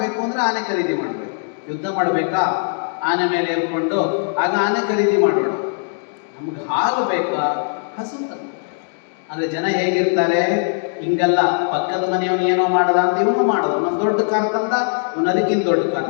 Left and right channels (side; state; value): right; silent; digital silence